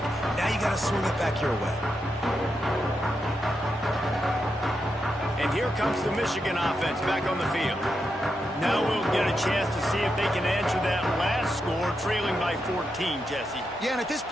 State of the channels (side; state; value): right; noise; rumble, 27 dB below the sound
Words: Now you got to swing it back your way. And here comes the Michigan offense back on the field. Now we'll get a chance to see if they can answer that last score, trailing by 14, Jesse. Yeah, and at this